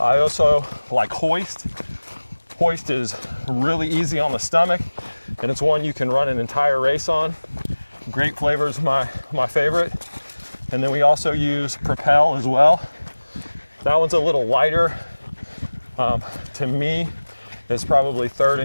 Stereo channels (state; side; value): inverted; both; correlation -1.00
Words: also like Hoist. Hoist is really easy on the stomach, and it's one you can run an entire race on. Grape flavor is my favorite. And then we also use Propel as well. That one's a little lighter. To me, it's probably third